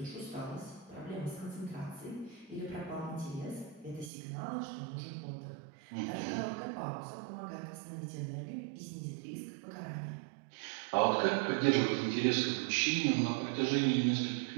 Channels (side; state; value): left; drops out; at 4.1 s